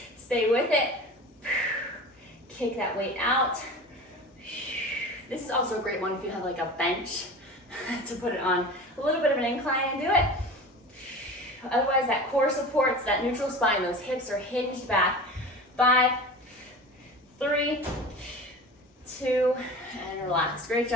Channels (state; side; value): normal; both; correlation 0.35